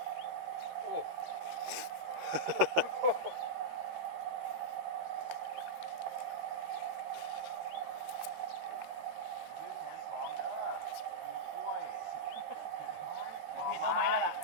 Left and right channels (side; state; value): left; late; 13 ms